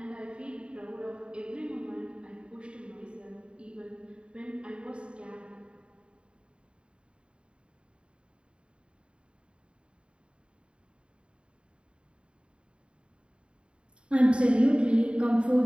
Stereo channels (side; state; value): left; late; 0.054 ms